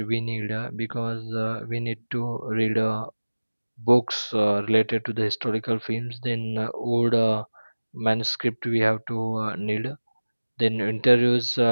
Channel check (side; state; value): both; inverted; correlation -1.00